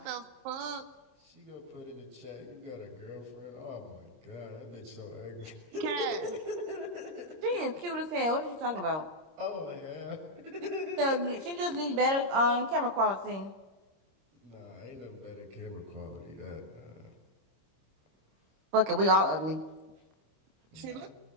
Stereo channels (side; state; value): left; late; 26 ms